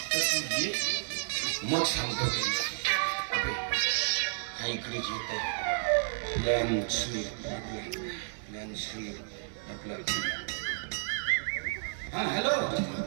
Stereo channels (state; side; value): silent; left; digital silence